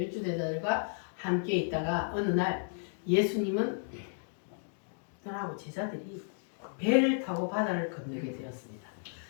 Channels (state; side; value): silent; right; digital silence